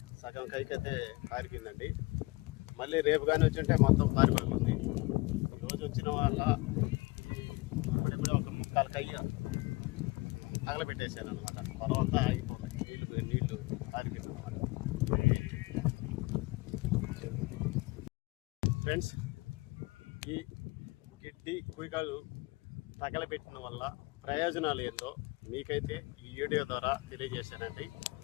సగం కైకైతే కారిపోయిందండి. మళ్ళీ రేపు కానీ వచ్చింటే మొత్తం కారిపోతుంది. రోజు వచ్చిన వాళ్ళ అప్పుడే ఒక ముక్కాలు కై తగలబెట్టేసాను అనమాట. తర్వాత ఆగిపోతాయి నీళ్ళు కారిపోయింది అనమాట. ఫ్రెండ్స్, ఈ గిడ్డి కుయికాలు తగలబెట్టడం వల్ల ప్రయోజనాలు ఏందో మీకైతే ఈ వీడియో ద్వారా తెలియజేశానండి.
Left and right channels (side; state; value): right; quieter; 23.8 dB